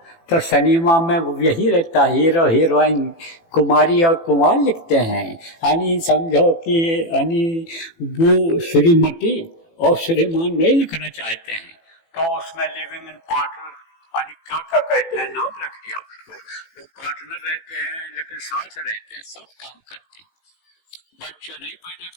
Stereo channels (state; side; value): late; right; 18 ms